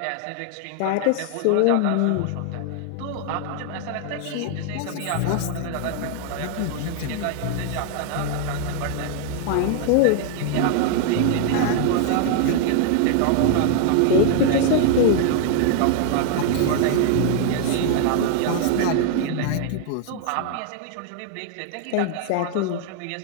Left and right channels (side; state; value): both; different; correlation 0.00